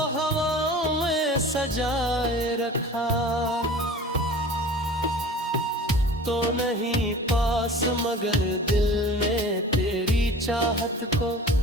हवाओं में सजाए रखा। तो नहीं पास मगर दिल ने तेरी चाहत को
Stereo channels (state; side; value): normal; both; correlation 0.41